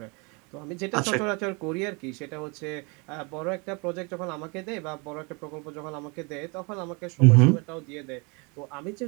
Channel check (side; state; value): left; quieter; 30.8 dB